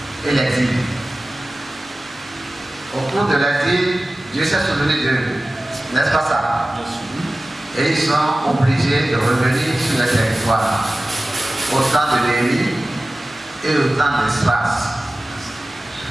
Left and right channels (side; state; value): both; normal; correlation 0.96